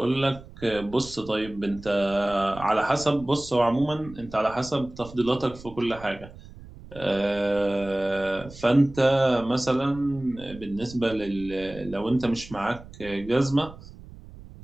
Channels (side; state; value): right; noise; rumble, 17 dB below the sound